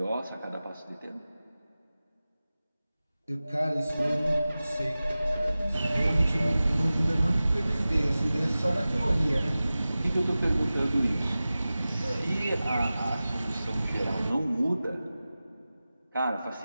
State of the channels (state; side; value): inverted; both; correlation -0.96